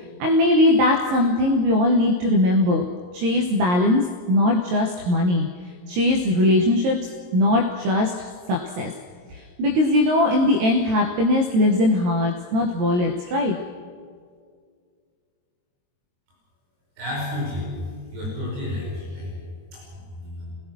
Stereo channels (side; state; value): left; late; 22 ms